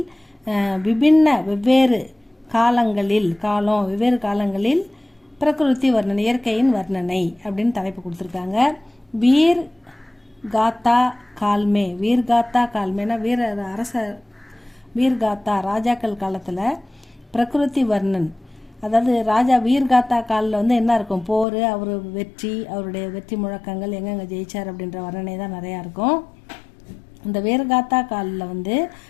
வெவ்வேறு காலங்களில் பிரகிருதி வர்ணனை, இயற்கையின் வர்ணனை அப்படின்னு தலைப்பு கொடுத்துருக்காங்க. வீர் காத்தா கால்மேனா வீர்காத்தா ராஜாக்கள் காலத்தில் பிரகிருதி வர்ணன், அதாவது ராஜா வீர்காத்தா காலில் என்ன இருக்கும், போர், அவர் வெற்றி, அவருடைய வெற்றி முழக்கங்கள், எங்கெங்க ஜெயிச்சார் அப்படின்ற வர்ணனை தான் நிறையா இருக்கும். இந்த வீர்காத்தா காலில்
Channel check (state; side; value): drops out; right; at 21.5 s